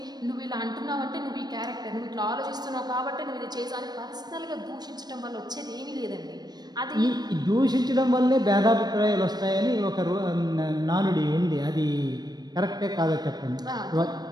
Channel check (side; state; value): left; late; 0.19 ms